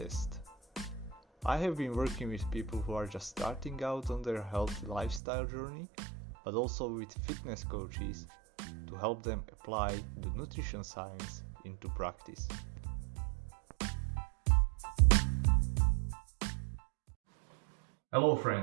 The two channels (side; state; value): left; drops out; at 5.2 s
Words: I have been working with people who are just starting out on their healthy lifestyle journey, but also with fitness coaches to help them apply the nutrition science into practice. Hello